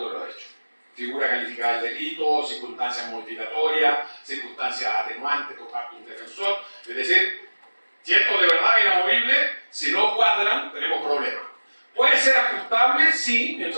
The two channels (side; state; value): both; inverted; correlation -1.00